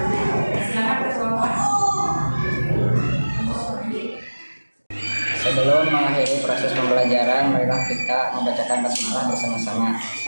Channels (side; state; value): both; inverted; correlation -1.00